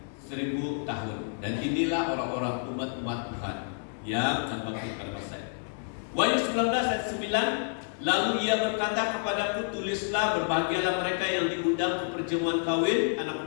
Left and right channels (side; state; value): right; silent; digital silence